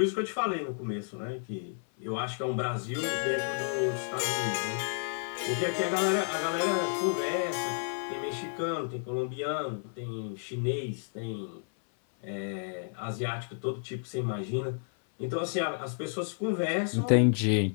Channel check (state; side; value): silent; right; 57 dB below the other